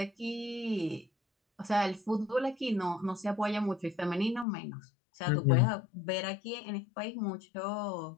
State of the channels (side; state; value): right; drops out; at 4.5 s